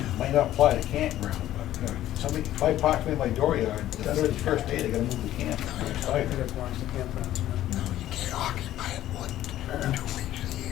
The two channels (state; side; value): quieter; right; 13.3 dB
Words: Might not apply to campground, but, somebody, if I park in my dooryard, the 31st day, they gotta move the camper. I think it belongs to campgrounds. No, you can't occupy it more than 2 weeks a